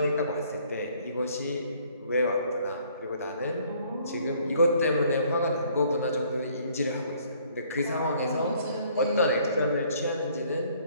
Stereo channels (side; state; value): both; inverted; correlation -0.61